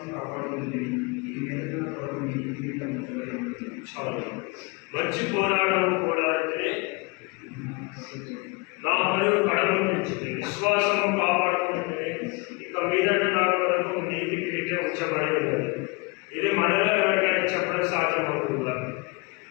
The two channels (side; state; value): right; quieter; 28.0 dB